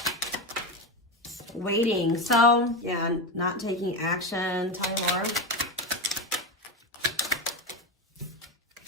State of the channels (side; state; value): both; normal; correlation 0.17